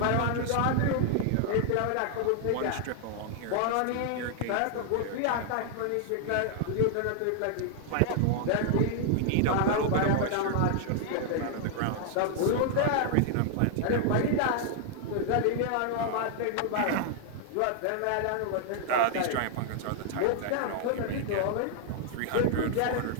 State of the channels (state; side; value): different; both; correlation 0.00